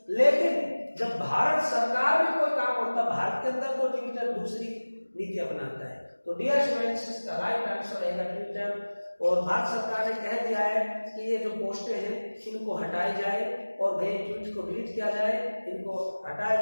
लेकिन जब भारत सरकार में कोई काम होता है, भारत के अंदर तो ट्विटर दूसरी नीति अपनाता है। तो डियर स्टूडेंट्स, इसका राइट आंसर रहेगा ट्विटर। और भारत सरकार ने कह दिया है कि ये जो पोस्टें हैं इनको हटाई जाए और गए ट्वीट को डिलीट किया जाए, इनको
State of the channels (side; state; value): both; inverted; correlation -1.00